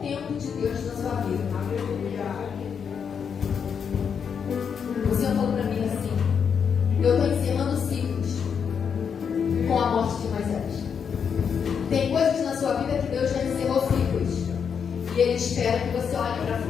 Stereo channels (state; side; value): quieter; right; 6.9 dB